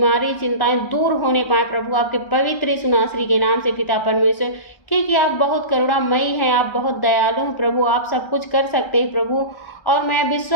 चिंताएं दूर होने पाए प्रभु आपके पवित्र यीशु नासरी के नाम से पिता परमेश्वर। क्योंकि आप बहुत करुणामयी हैं, आप बहुत दयालु हैं प्रभु, आप सब कुछ कर सकते हैं प्रभु। और मैं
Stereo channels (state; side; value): late; right; 1.3 ms